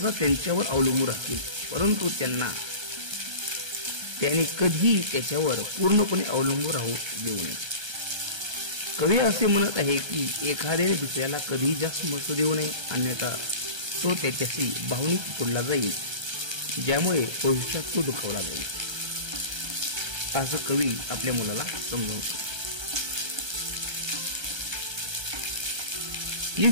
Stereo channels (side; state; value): left; late; 1.3 ms